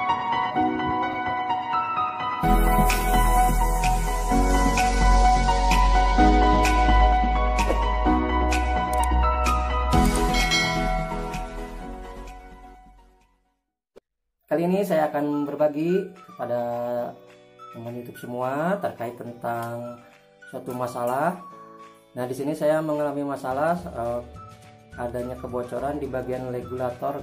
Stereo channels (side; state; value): both; identical; correlation 1.00